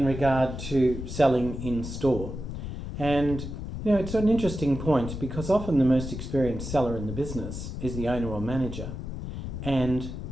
regard to selling in store. And, it's an interesting point because often the most experienced seller in the business is the owner or manager. And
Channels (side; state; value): left; noise; rumble, 7 dB below the sound